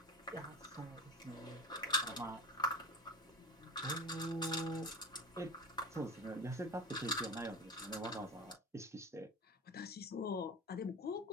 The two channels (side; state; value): both; normal; correlation 0.31